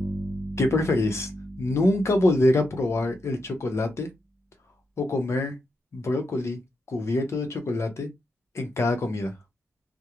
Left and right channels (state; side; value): normal; both; correlation 0.84